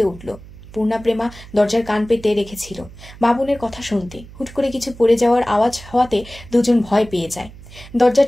উঠল। পূর্ণা প্রেমা দরজার কান পেতে রেখেছিল বাবুনের কথা শুনতে। হুট করে কিছু পড়ে যাওয়ার আওয়াজ হওয়াতে দুজন ভয় পেয়ে যায়। দরজা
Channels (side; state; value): right; noise; hum, 18 dB below the sound